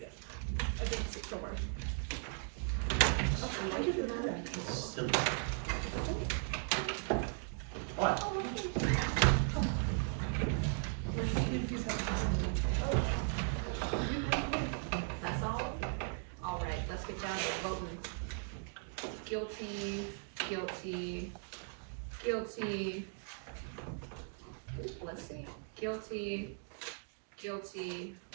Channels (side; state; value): left; silent; 53 dB below the other